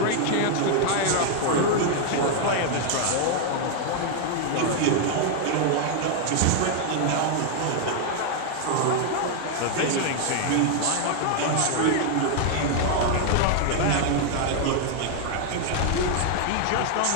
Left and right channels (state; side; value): different; both; correlation 0.00